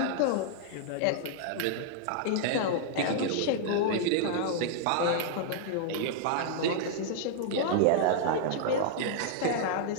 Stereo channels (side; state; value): both; different; correlation -0.01